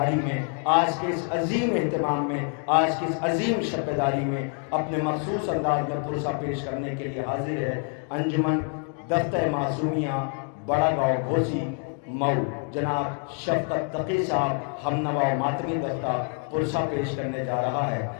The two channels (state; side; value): quieter; right; 36.9 dB